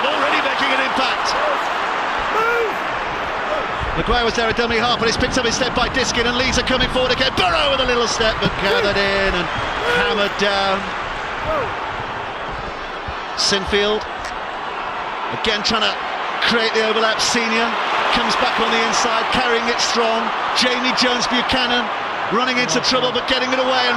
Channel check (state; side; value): identical; both; correlation 1.00